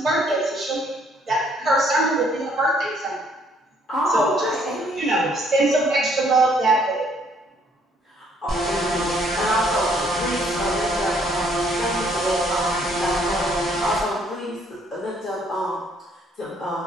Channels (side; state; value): both; normal; correlation 0.65